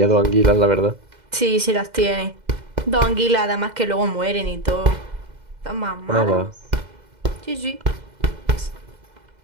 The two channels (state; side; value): late; left; 2.1 ms